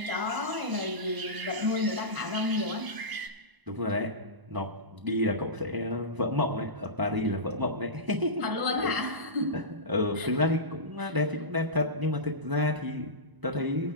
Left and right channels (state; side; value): late; left; 1.0 ms